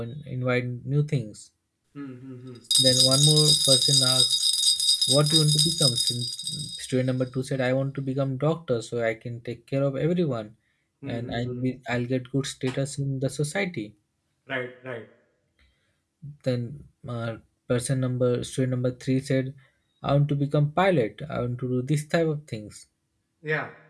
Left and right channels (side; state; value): both; identical; correlation 1.00